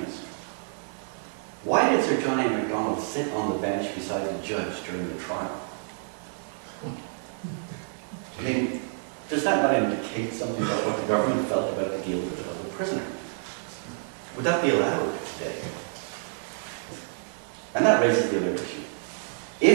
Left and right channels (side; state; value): left; silent; digital silence